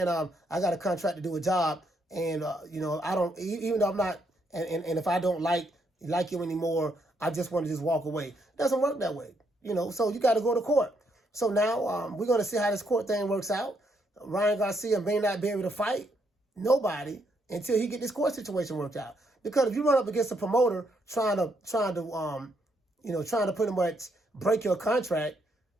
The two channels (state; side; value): normal; both; correlation 0.75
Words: I got a contract to do a job, and I don't, even though I'm not, and if I don't like you anymore, I just want to just walk away. It doesn't work that way, so you got to go to court. So now we're going to see how this court thing works out. Ryan Garcia may not be able to fight nobody until he get this court situation worked out. Because if you run up against a promoter trying to pretty much break your contract,